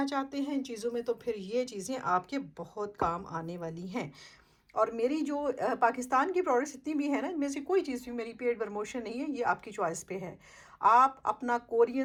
चाहते हैं इन चीज़ों में, तो फिर ये चीज़ें आपके बहुत काम आने वाली हैं। और मेरी जो पाकिस्तान की प्रोडक्ट्स जितनी भी है ना, इनमें से कोई चीज़ भी मेरी पेड प्रमोशन नहीं है, ये आपकी चॉइस पे है। आप अपना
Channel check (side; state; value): both; identical; correlation 1.00